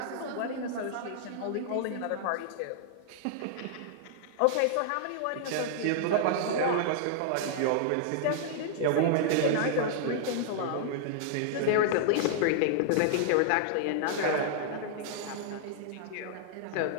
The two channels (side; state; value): both; different; correlation -0.01